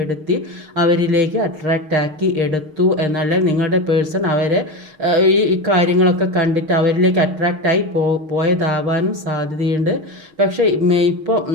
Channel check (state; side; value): late; left; 6.5 ms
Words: അവരിലേക്ക് അട്രാക്റ്റ് ആക്കി എടുത്തു എന്നല്ല, നിങ്ങളുടെ പേഴ്സൺ അവരെ ഈ കാര്യങ്ങളൊക്കെ കണ്ടിട്ട് അവരിലേക്ക് അട്രാക്റ്റായി പോയതാവാനും സാധ്യതയുണ്ട്. പക്ഷേ ഇപ്പോൾ